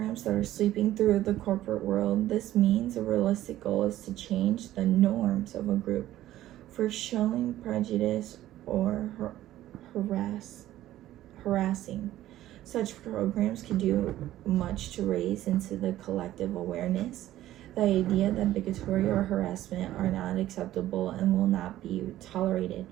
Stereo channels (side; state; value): left; quieter; 14.1 dB